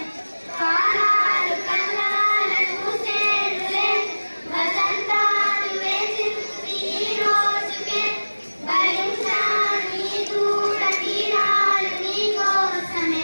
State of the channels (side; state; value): both; inverted; correlation -1.00